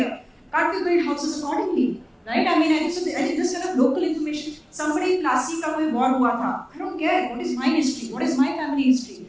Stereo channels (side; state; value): both; identical; correlation 1.00